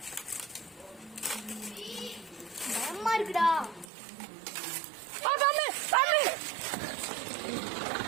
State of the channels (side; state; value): left; drops out; at 3.9 s